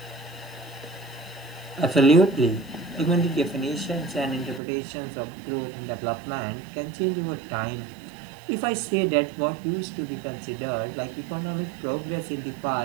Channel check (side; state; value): left; drops out; at 4.6 s